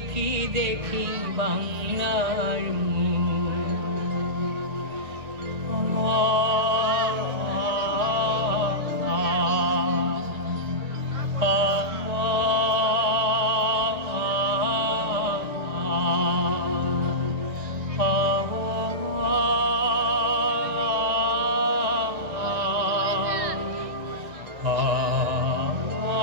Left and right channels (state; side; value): late; left; 1.8 ms